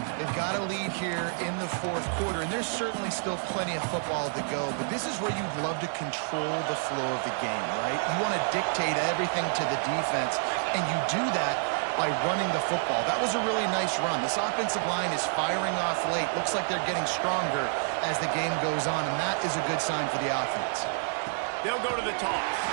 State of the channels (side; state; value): left; silent; digital silence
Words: They've got a lead here in the fourth quarter, and there's certainly still plenty of football to go, but this is where you'd love to control the flow of the game, right? You want to dictate everything to the defense, and you do that by running the football. That was a really nice run. This offensive line is firing off late. Looks like they're getting stronger as the game goes on, and that is a good sign for the offense. They'll go to the toss.